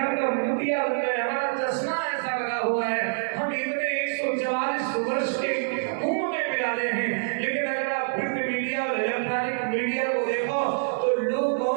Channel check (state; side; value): silent; left; 61 dB below the other